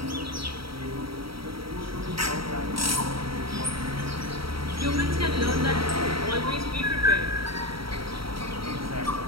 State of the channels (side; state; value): left; late; 0.75 ms